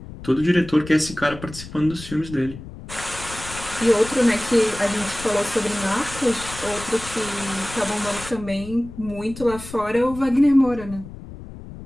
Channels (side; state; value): left; noise; rumble, 14 dB below the sound